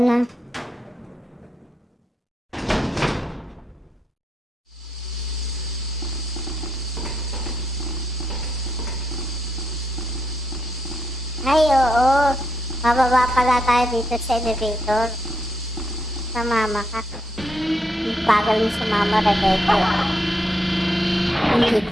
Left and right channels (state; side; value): normal; both; correlation 0.80